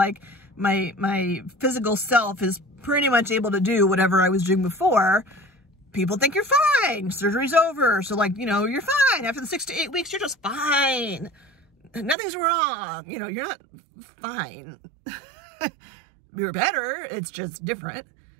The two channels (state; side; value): drops out; left; at 12.2 s